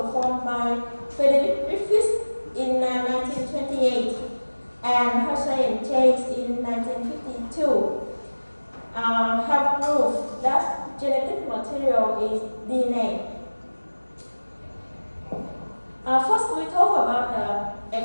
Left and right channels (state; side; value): inverted; both; correlation -1.00